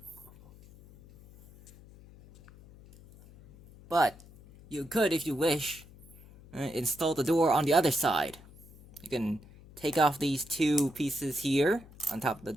But you could, if you wish, install the door on the other side. You can take off these two pieces here on top of the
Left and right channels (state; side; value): noise; left; hum, 22 dB below the sound